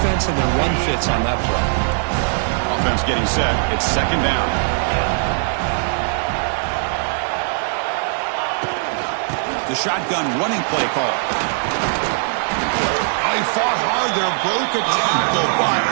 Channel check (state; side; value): silent; left; 66 dB below the other